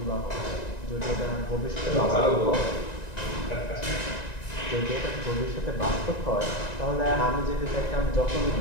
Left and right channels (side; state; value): right; late; 1.9 ms